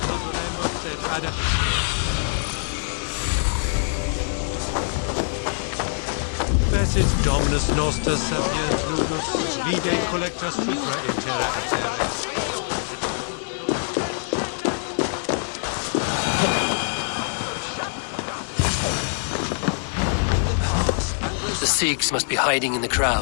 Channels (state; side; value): silent; right; digital silence